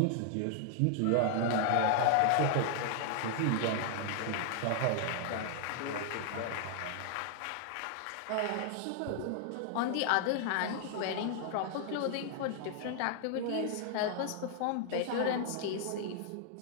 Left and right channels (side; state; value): both; different; correlation 0.00